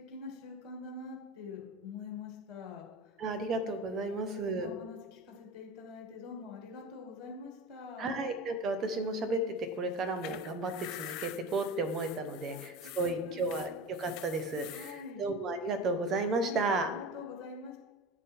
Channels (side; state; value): both; normal; correlation 0.31